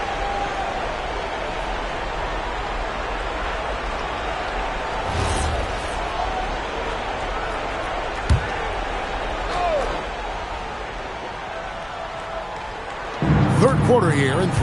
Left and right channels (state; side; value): identical; both; correlation 1.00